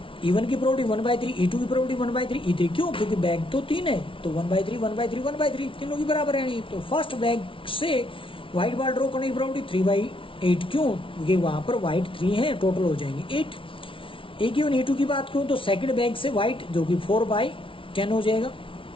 E1 की प्रोबेबिलिटी 1/3, E2 की प्रोबेबिलिटी 1/3, E3 क्यों? क्योंकि बैग तो 3 है, तो 1/3 1/3 1/3 तीनों की बराबर है। तो फर्स्ट बैग से व्हाइट बॉल ड्रॉ करने की प्रोबेबिलिटी 3/8 क्यों? क्योंकि वहां पर व्हाइट 3 है, टोटल हो जाएंगे 8। ए गिवन E2 की बात करूं तो सेकंड बैग से व्हाइट जो कि 4/10 हो जाएगा।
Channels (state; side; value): late; right; 0.25 ms